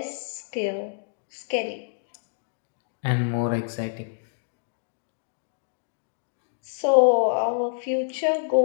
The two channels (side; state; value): right; silent; digital silence